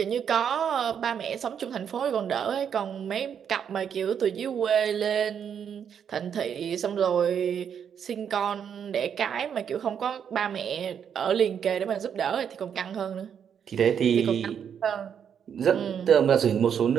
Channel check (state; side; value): quieter; left; 8.0 dB